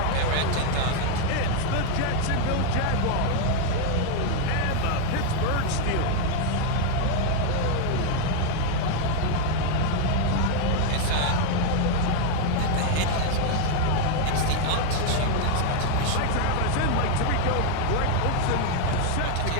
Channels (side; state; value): both; different; correlation 0.01